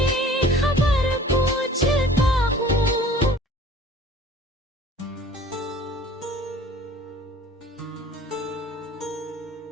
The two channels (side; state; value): both; normal; correlation 0.49